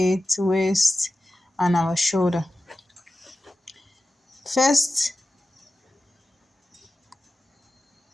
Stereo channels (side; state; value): both; normal; correlation 0.93